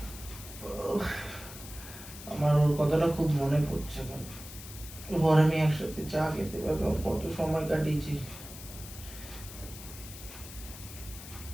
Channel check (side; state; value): left; noise; hiss, 14 dB below the sound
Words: খুব মনে পড়ছে এখন। ঘরে আমি একসাথে চা খেতে পারলাম, কত সময় কাটিয়েছি।